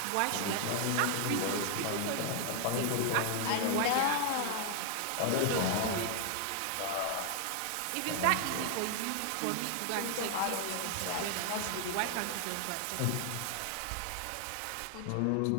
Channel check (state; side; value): different; both; correlation 0.00